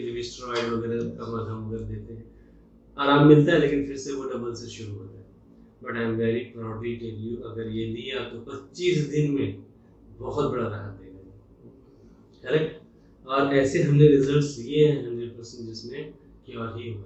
भी स्टेरॉइड वगैरह का मलहम वगैरह देते हैं, आराम मिलता है, लेकिन फिर से वो डबल से शुरू होता है। But I am very proudly tell you, अगर ये लिया तो 25 दिन में बहुत बड़ा राहत देगा। करेक्ट। और ऐसे हमने रिजल्ट्स लिए हैं 100% जिसमें क्योर ही हुआ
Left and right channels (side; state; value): both; identical; correlation 1.00